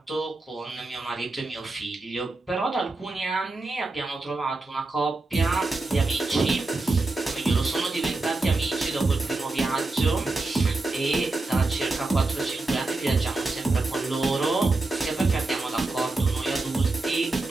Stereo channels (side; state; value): left; quieter; 3.2 dB